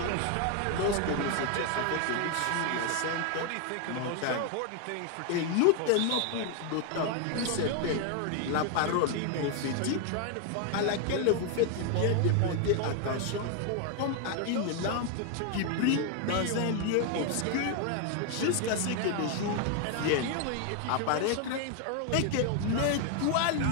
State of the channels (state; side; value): different; both; correlation 0.00